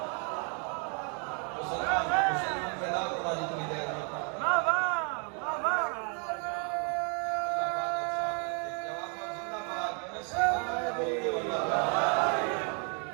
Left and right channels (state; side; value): quieter; left; 38.8 dB